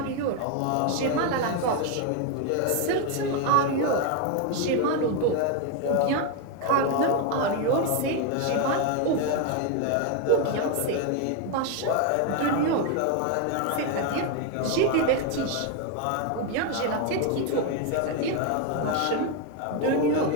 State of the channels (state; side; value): different; both; correlation 0.01